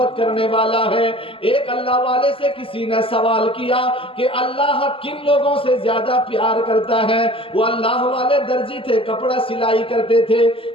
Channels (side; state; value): right; late; 0.26 ms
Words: کرنے والا ہے. ایک اللہ والے سے کسی نے سوال کیا کہ اللہ کن لوگوں سے زیادہ پیار کرتا ہے. وہ اللہ والے درزی تھے, کپڑا سلائی کرتے تھے.